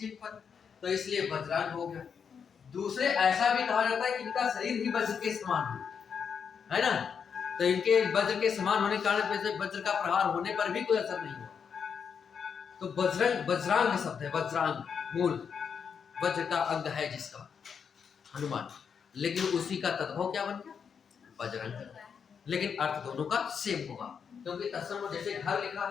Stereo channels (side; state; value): right; quieter; 6.7 dB